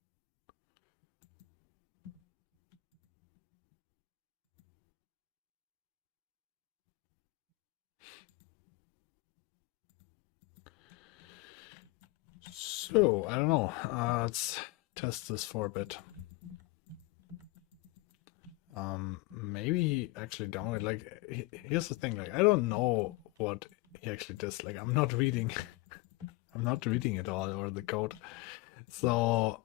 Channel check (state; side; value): quieter; right; 21.5 dB